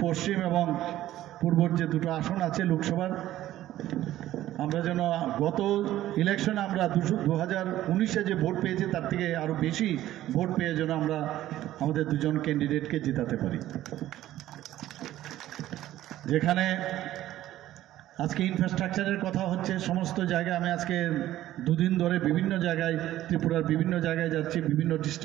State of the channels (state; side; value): quieter; left; 13.9 dB